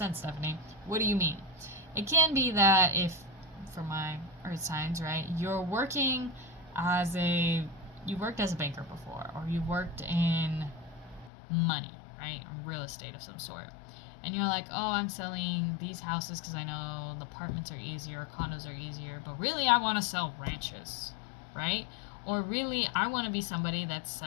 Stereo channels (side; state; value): right; drops out; at 11.3 s